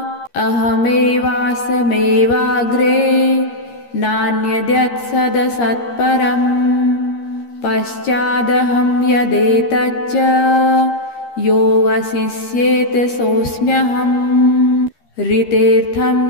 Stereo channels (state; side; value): late; right; 13 ms